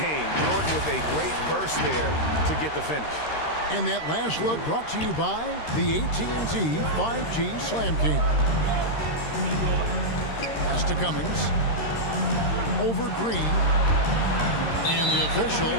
game. Jordan with a great burst there to get the finish. And that last look brought to you by the AT&T 5G Slam King. Pass to Cummings. Over Green. And the official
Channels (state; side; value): late; right; 13 ms